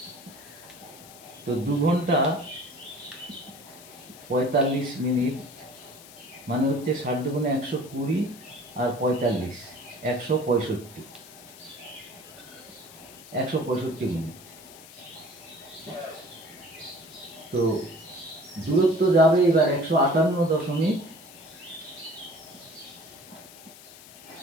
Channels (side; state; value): left; noise; hiss, 19 dB below the sound